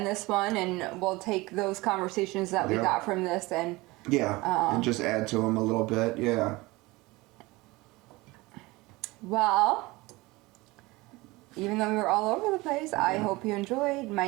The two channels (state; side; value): quieter; left; 21.8 dB